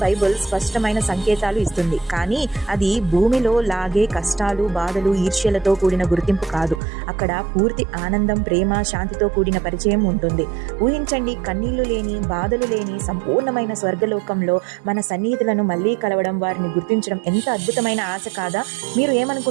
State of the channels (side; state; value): left; drops out; at 6.8 s